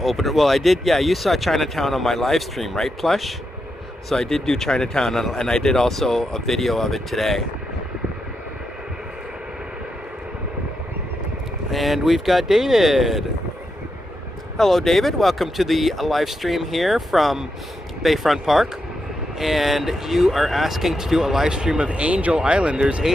Well, I did, yeah, you saw Chinatown on my live stream, right, Plush? So I did do Chinatown, and I did also a video of it today. And we've got David. Hello, David. Welcome to the live stream here from Bayfront Park. And you are asking to do a live stream of Angel Island. There's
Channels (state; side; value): normal; both; correlation 0.84